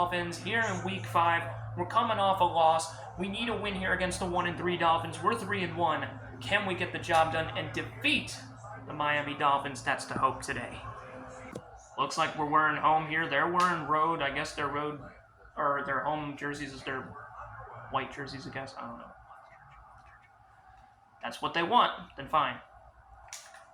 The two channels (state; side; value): identical; both; correlation 1.00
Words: here in Week 5. We're coming off a loss. We need a win here against the 1-3 Dolphins. We're 3-1. Can we get the job done and defeat the Miami Dolphins? That's the hope today. Looks like we're wearing home here. They're wearing road. I guess their road, or their home jerseys is their white jerseys, I guess. I don't know. That's what they want. Then fine.